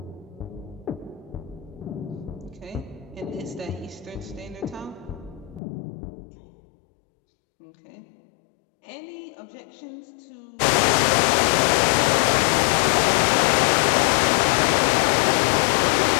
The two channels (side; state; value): right; drops out; at 5.6 s